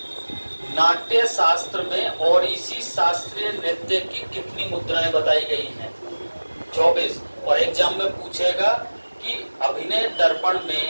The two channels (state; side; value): inverted; both; correlation -1.00